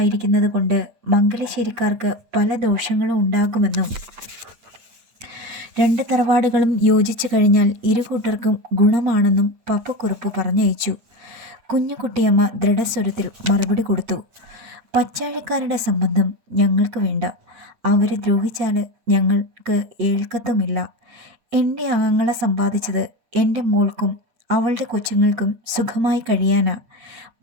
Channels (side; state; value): left; late; 8.5 ms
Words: കൊണ്ട് മംഗലശ്ശേരിക്കാർക്ക് പല ദോഷങ്ങളും ഉണ്ടാകുമെന്നും രണ്ട് തറവാടുകളും യോജിച്ചു കഴിഞ്ഞാൽ ഇരുകൂട്ടർക്കും ഗുണമാണെന്നും പപ്പുക്കുറുപ്പ് പറഞ്ഞയച്ചു. കുഞ്ഞുകുട്ടിയമ്മ ദൃഢസ്വരത്തിൽ മറുപടി കൊടുത്തു. പച്ചാഴിക്കാരുടെ സംബന്ധം ഞങ്ങൾക്ക് വേണ്ട. അവരെ ദ്രോഹിച്ചാൽ ഞങ്ങൾക്ക് ഏൽക്കത്തുമില്ല. എൻ്റെ ആങ്ങളെ സമ്പാദിച്ചത് എൻ്റെ മോൾക്കും അവളുടെ കൊച്ചുങ്ങൾക്കും സുഖമായി കഴിയാനാ.